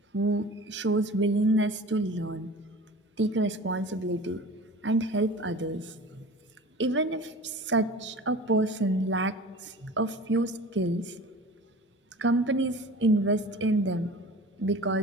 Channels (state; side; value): normal; both; correlation 0.39